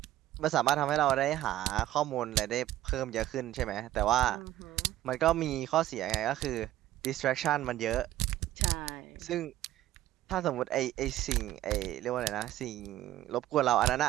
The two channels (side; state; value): left; quieter; 14.1 dB